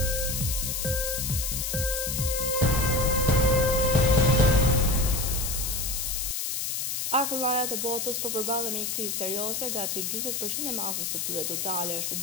Akullajat e botës po përballen me një krizë serioze, gati 40% e masës së tyre totale është e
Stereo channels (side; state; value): left; noise; hiss, 2 dB below the sound